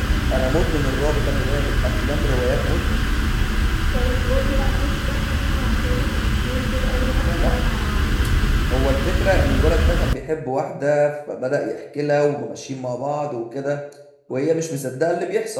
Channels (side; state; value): both; identical; correlation 1.00